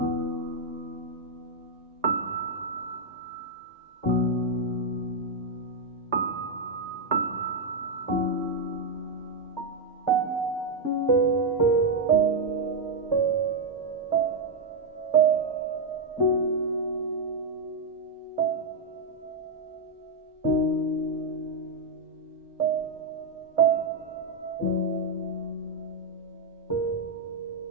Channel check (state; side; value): quieter; left; 3.3 dB